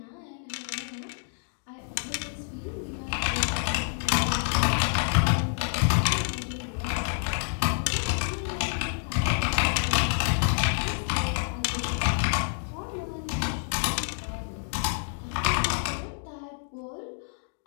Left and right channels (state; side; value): silent; right; digital silence